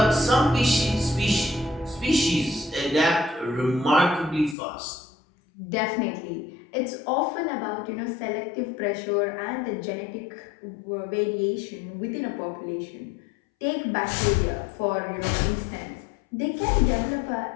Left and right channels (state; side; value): drops out; right; at 4.5 s